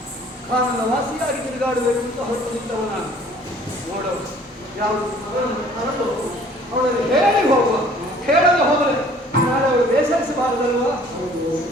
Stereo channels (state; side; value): normal; both; correlation 0.54